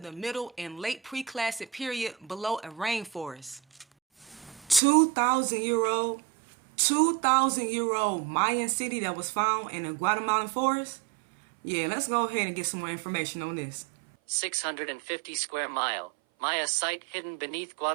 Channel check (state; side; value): drops out; left; at 4.8 s